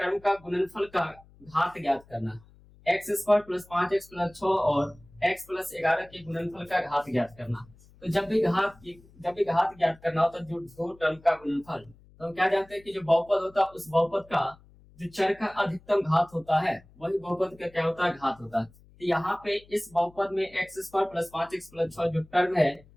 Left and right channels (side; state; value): left; noise; hum, 26 dB below the sound